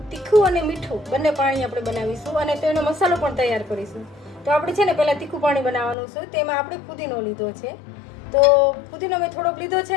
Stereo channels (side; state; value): right; drops out; at 6.0 s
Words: તીખું અને મીઠું બંને પાણી આપણે બનાવીશું અને તો એનો મસાલો પણ તૈયાર કરીશું. તો આપણે છે ને પહેલાં તીખું પાણી બનાવવાનું છે. તેમાં આપણે ફુદીનો લીધો છે. તો ફુદીનો મેં થોડોક લીધો છે